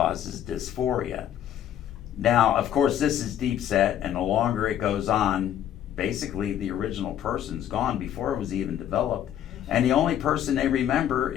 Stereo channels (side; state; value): right; quieter; 10.6 dB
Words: dysphoria. Now, of course, this is deep set, and the longer it goes on, basically the original person's gone before it was even developed. And the only person they remember